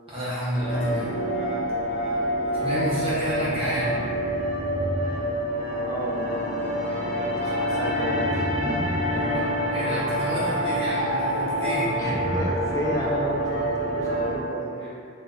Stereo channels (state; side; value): normal; both; correlation 0.05